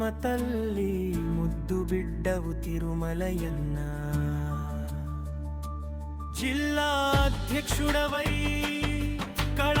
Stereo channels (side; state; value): both; identical; correlation 1.00